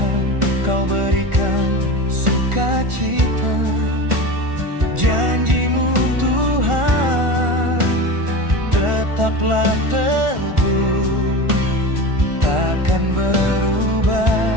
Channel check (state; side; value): late; left; 1.4 ms